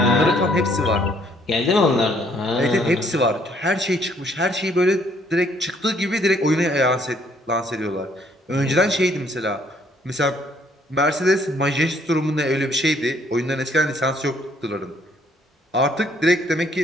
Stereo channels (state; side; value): normal; both; correlation 0.65